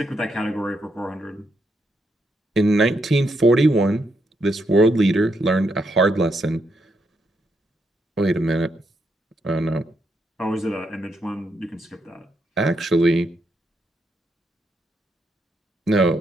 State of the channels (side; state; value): both; normal; correlation 0.79